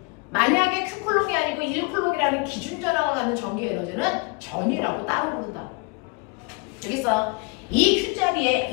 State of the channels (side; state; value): right; quieter; 29.8 dB